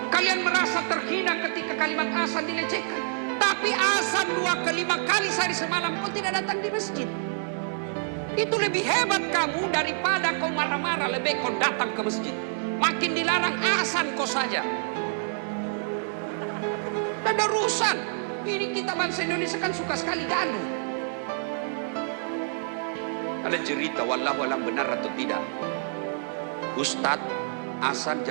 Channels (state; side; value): silent; left; digital silence